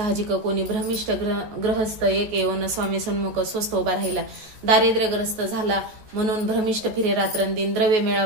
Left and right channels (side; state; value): left; late; 14 ms